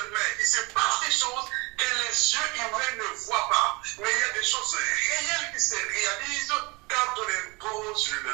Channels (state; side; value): quieter; left; 26.6 dB